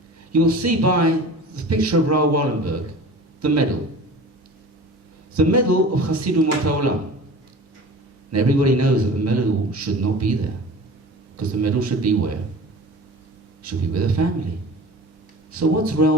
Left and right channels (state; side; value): normal; both; correlation 0.38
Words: you'll see by the picture of Raoul Wallenberg the medal. The medal of Chassidu Mot HaOlam. And everybody knows that the medal should not be there, because the medal should be where? It should be with a family. So what's